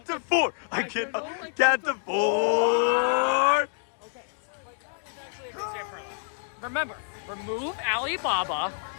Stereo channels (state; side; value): silent; right; digital silence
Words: to 4. I can get to 4. remember, remove Alibaba